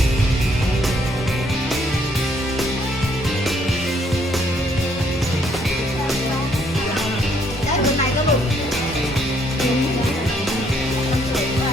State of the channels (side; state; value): both; normal; correlation 0.68